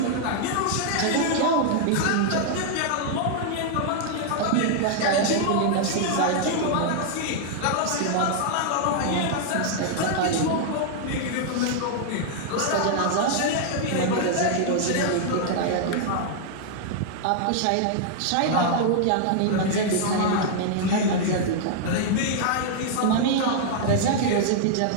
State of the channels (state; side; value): different; both; correlation -0.01